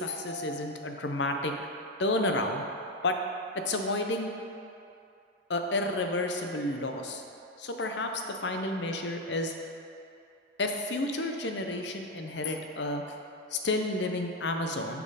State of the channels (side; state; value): both; normal; correlation 0.08